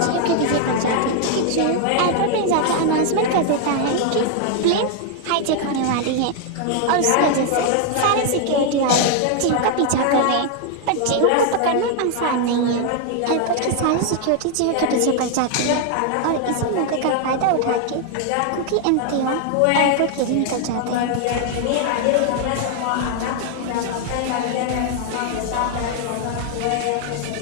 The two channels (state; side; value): different; both; correlation 0.00